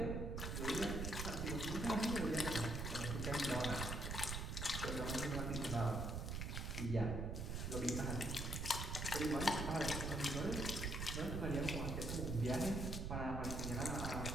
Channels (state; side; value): noise; right; rumble, 2 dB below the sound